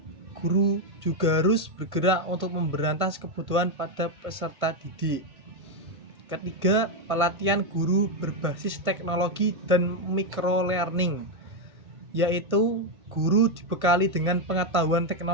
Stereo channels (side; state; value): left; late; 1.5 ms